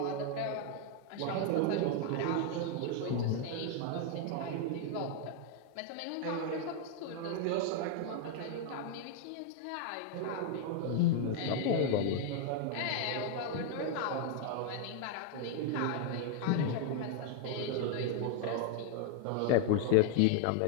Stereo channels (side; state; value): both; different; correlation 0.00